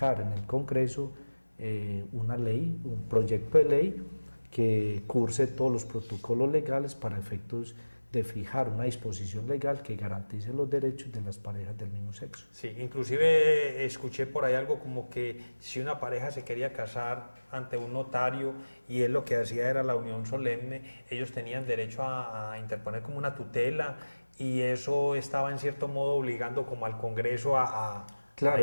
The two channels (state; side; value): inverted; both; correlation -1.00